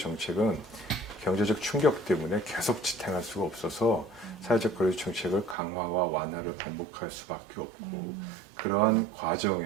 경제적 충격 때문에 계속 지탱할 수가 없어서 사회적 거리두기 정책을 강화와 완화를 반복할 수밖에 없고 그러한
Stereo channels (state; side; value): drops out; left; at 5.6 s